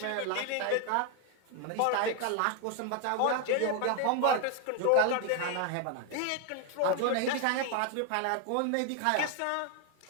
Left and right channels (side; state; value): both; different; correlation 0.00